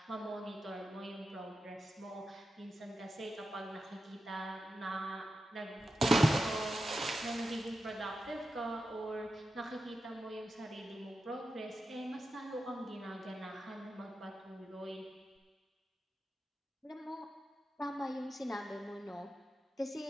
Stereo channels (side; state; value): both; normal; correlation 0.90